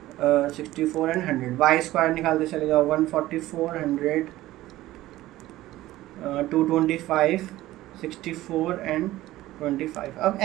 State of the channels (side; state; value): left; quieter; 16.1 dB